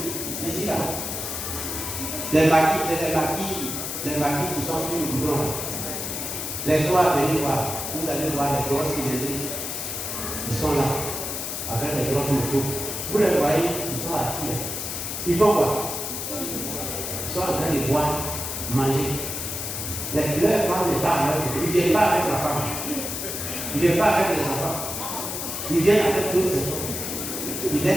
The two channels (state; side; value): noise; left; hiss, 4 dB below the sound